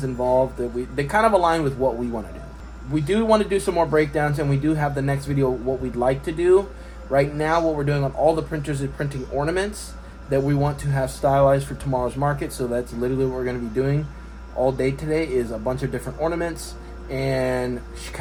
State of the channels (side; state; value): both; identical; correlation 1.00